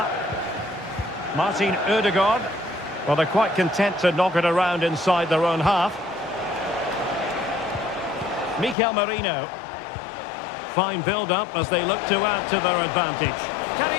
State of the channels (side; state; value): right; drops out; at 8.8 s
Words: Martin Ødegaard. Well, they're quite content to knock it around inside their own half. Mikel Merino. Fine build-up as they look to add to their advantage. Can he